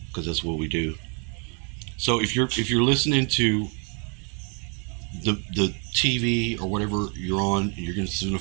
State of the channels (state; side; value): quieter; left; 37.9 dB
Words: because that's what we do. So if you're listening to the TV or whatever you're on, and you're gonna